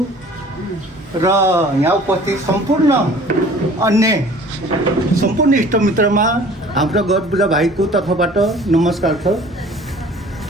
र यहाँ उपस्थित सम्पूर्ण अन्य सम्पूर्ण इष्टमित्रमा हाम्रो गर्बोजा भाइको तर्फबाट नमस्कार छ।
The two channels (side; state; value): both; normal; correlation 0.49